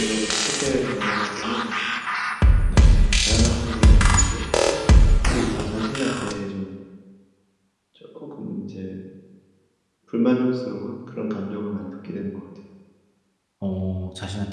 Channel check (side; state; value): both; identical; correlation 1.00